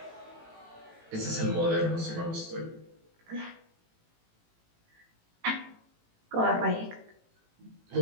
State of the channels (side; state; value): left; late; 18 ms